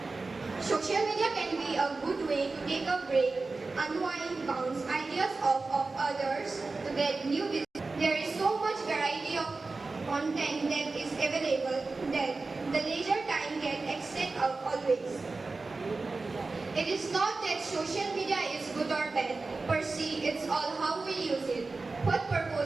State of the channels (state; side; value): quieter; left; 3.7 dB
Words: Social media can be a good way to take a break, unwind, bounce ideas off of others to get new business. There is so much variety of content that is available that the leisure time can extend always. It is not that social media is good or bad per se, it's all how we use it, what